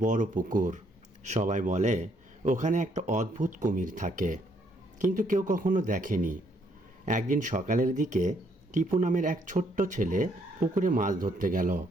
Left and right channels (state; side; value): normal; both; correlation 0.70